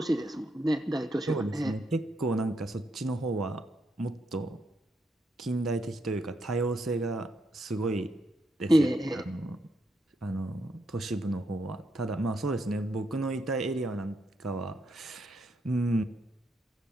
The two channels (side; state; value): both; normal; correlation 0.79